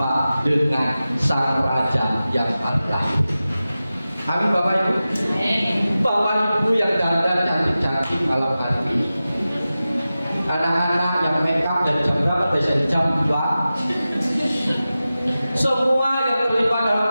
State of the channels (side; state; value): both; inverted; correlation -0.94